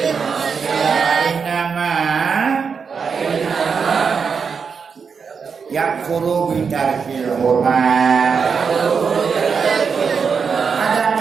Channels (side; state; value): left; quieter; 5.9 dB